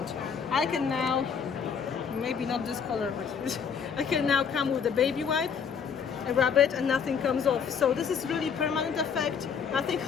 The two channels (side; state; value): right; quieter; 6.7 dB